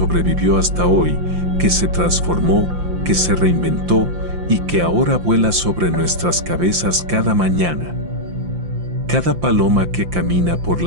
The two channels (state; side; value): late; left; 5.8 ms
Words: hasta hoy, que se transformó, que se reinventó y que ahora vuela sobre nuestras cabezas cada mañana. Cada paloma que camina por